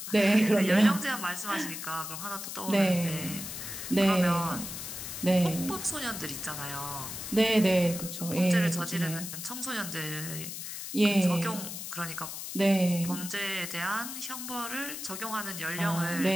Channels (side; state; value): left; noise; hiss, 7 dB below the sound